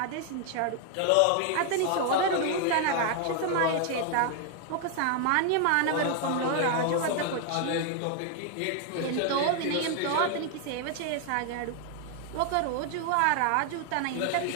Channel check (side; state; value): both; different; correlation 0.00